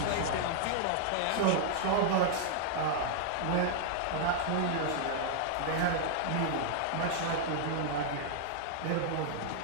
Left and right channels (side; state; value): both; different; correlation -0.01